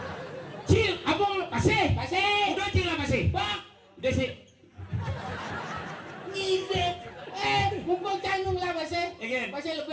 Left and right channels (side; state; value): both; identical; correlation 1.00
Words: Cing, apa pasir? Pasir. Udah Cing lah pasir. Bak. Udah sih. Ngide. Mumpung canggung lah pasir. Again. Pasir